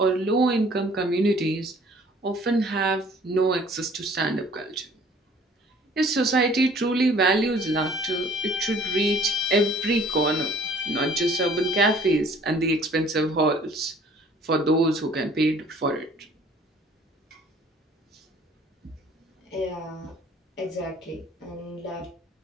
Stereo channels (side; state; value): both; normal; correlation 0.54